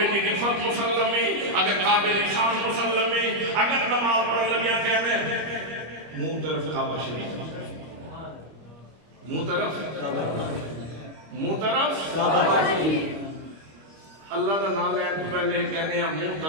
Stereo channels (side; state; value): left; late; 25 ms